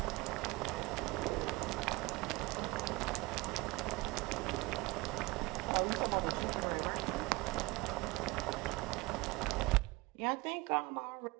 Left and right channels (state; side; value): quieter; left; 23.5 dB